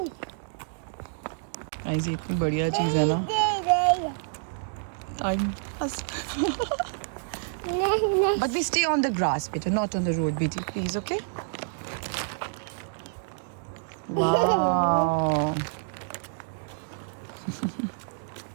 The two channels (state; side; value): silent; left; digital silence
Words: ऐसी इतनी बढ़िया चीज़ है ना, time pass. But we stay on the grass, beta, not on the road, BT, please, okay? Wow.